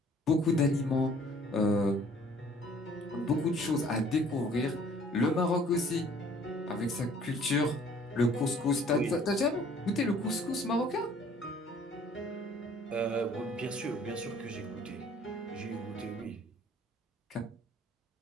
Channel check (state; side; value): normal; both; correlation 0.55